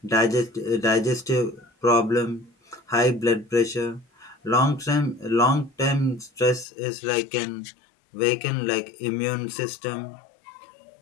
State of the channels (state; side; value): drops out; right; at 6.7 s